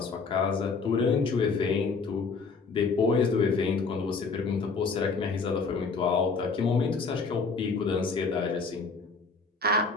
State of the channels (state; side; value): quieter; right; 4.5 dB